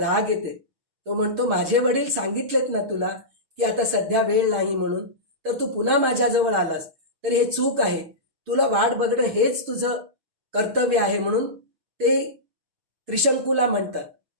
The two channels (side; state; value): left; late; 6.3 ms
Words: येते. तो म्हणतो माझे वडील सांगितलेत ना तुला की आता सध्या वेळ नाही म्हणून, तर तू पुन्हा माझ्याजवळ आलास तर हे चूक आहे. तुला वाट बघणं हेच तुझं कर्तव्य आहे म्हणून ते त्रिशंकूला म्हणतात.